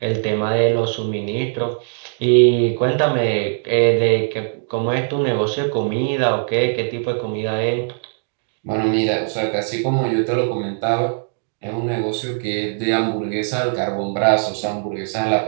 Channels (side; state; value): left; silent; 66 dB below the other